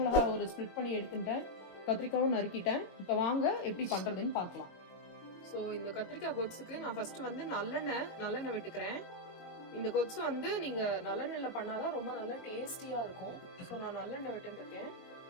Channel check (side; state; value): right; late; 22 ms